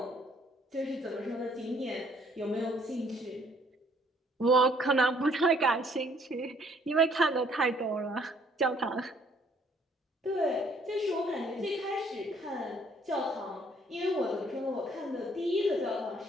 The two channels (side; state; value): both; normal; correlation 0.63